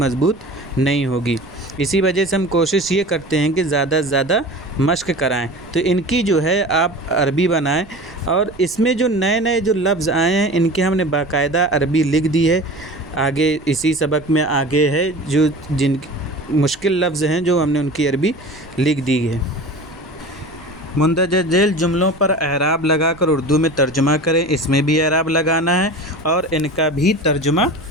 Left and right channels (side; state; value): right; noise; rumble, 23 dB below the sound